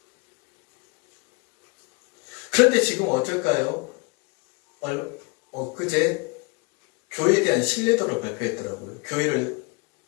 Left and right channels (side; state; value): right; quieter; 29.3 dB